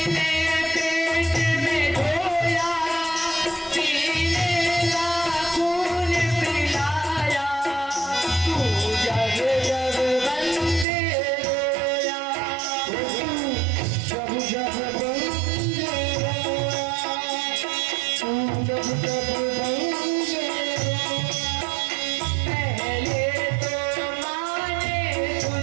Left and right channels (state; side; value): drops out; left; at 10.9 s